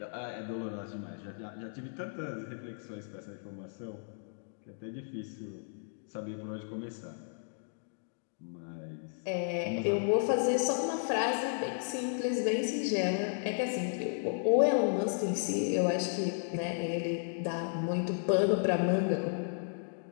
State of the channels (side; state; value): right; silent; digital silence